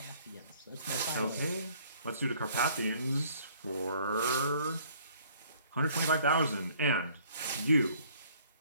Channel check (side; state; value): both; inverted; correlation -0.58